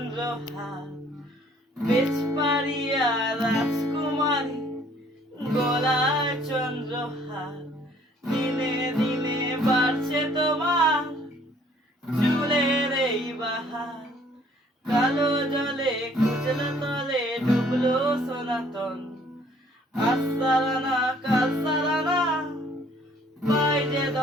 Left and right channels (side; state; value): both; normal; correlation 0.59